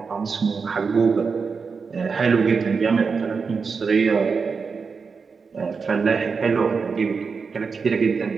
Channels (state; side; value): quieter; left; 5.2 dB